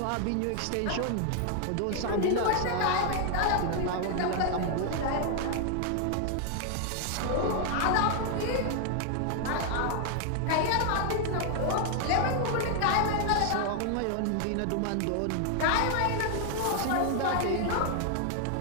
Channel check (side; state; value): both; different; correlation 0.00